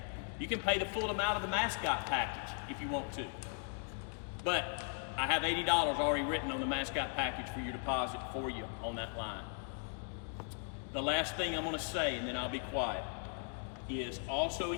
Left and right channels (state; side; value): silent; right; 52 dB below the other